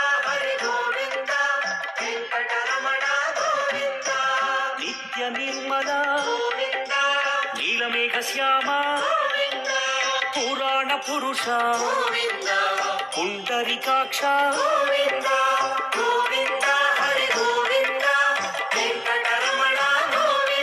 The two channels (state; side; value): identical; both; correlation 1.00